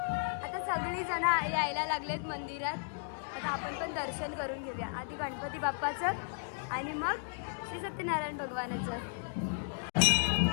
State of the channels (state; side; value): silent; right; digital silence